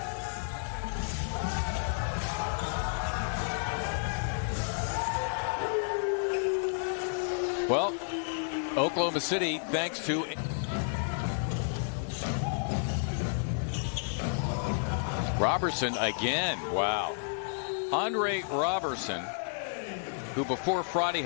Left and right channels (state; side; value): silent; right; digital silence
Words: Well, Oklahoma City, thanks to Robertson again. Wow. Andre Robertson, who before Friday